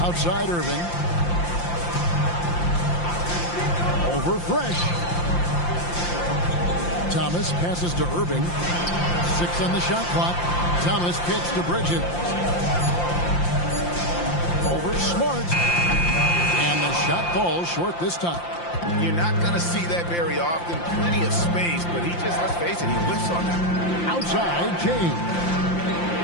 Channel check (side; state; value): right; late; 5.8 ms